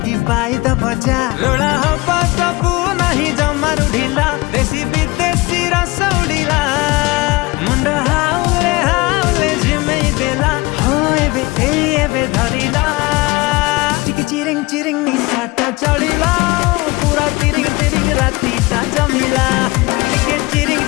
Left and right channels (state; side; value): quieter; right; 23.0 dB